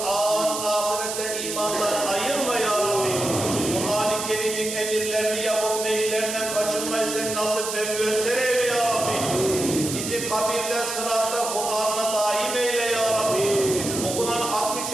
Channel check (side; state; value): right; noise; hiss, 5 dB below the sound